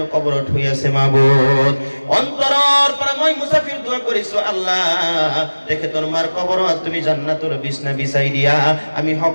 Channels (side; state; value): both; inverted; correlation -1.00